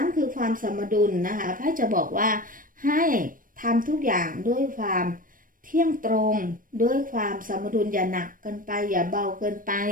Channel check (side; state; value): left; late; 0.40 ms